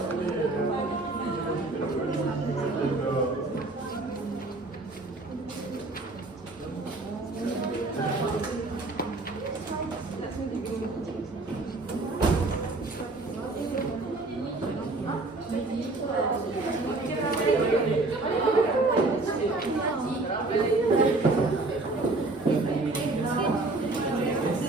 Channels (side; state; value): left; quieter; 3.2 dB